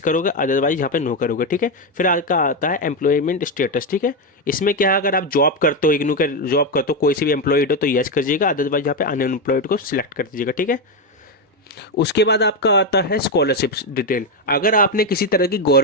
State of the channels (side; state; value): both; normal; correlation 0.08